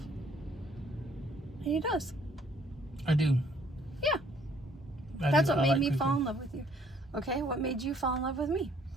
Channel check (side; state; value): both; normal; correlation 0.62